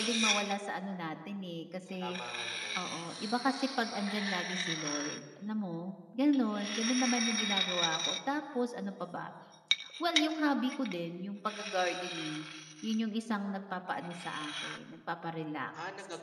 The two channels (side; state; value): both; identical; correlation 1.00